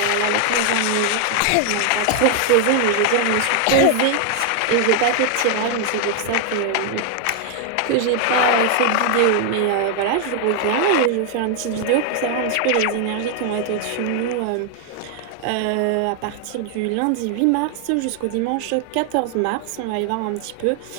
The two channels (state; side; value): different; both; correlation 0.00